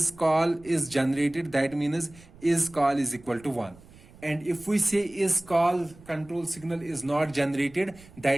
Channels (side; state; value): right; noise; rumble, 23 dB below the sound